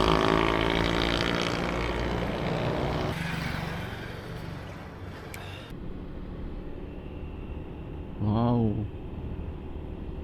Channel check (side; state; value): both; identical; correlation 1.00